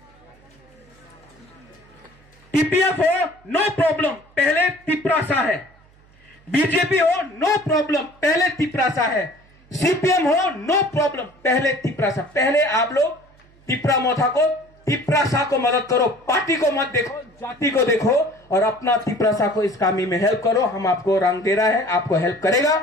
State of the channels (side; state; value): right; noise; hum, 29 dB below the sound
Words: टीपीएफ हो, नो प्रॉब्लम, पहले तिपरासा है, बीजेपी हो, नो प्रॉब्लम, पहले तिपरासा है, सीपीएम हो, नो प्रॉब्लम, पहले तिपरासा। पहले आप लोग तिपरा मोथा को, तिपरासा को मदद करो, पार्टी को मत देखो, जाति को देखो, और अपना तिपरासा को इस कामी में हेल्प करो। हम आपको रंग दे रहा है, आपको हेल्प करेगा।